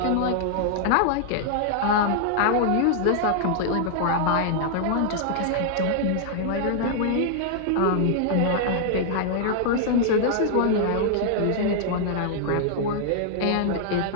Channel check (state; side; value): different; both; correlation -0.01